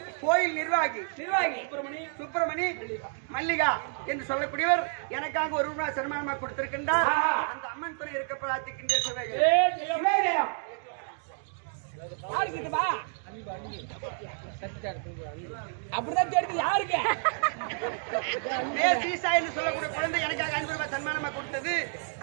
கோயில் நிர்வாகி சுப்பிரமணி மல்லிகா என்று சொல்லக்கூடியவர் எனக்காக 1 ரூபாய் சன்மானமா கொடுத்திருக்கின்றார். அந்த அம்மன் துணை இருக்க பிரார்த்திக்கின்ற சுபேஜயம். அப்படிதான் தெரியுது யாருக்கு சொல்லக்கூடிய குழந்தை எனக்காக 500 ரூபாய் சன்மானமா கொடுத்தது.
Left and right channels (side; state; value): left; silent; 58 dB below the other